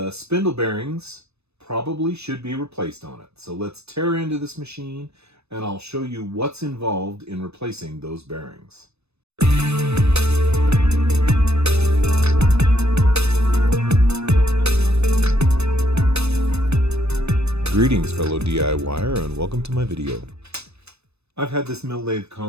spindle bearings probably should be replaced on it. So let's tear into this machine and I'll show you what's involved in replacing those bearings. Greetings fellow DIYer, and welcome to my video. I've had this mill lathe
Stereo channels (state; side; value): late; left; 0.80 ms